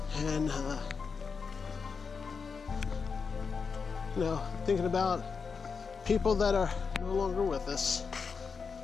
and you know, thinking about people that are no longer with us.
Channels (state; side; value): quieter; right; 5.4 dB